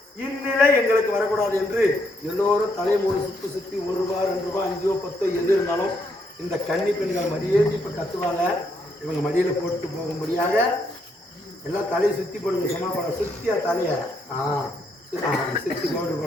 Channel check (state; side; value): normal; both; correlation 0.74